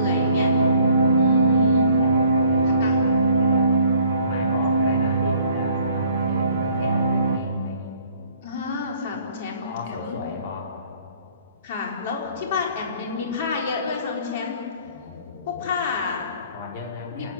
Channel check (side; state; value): both; inverted; correlation -0.59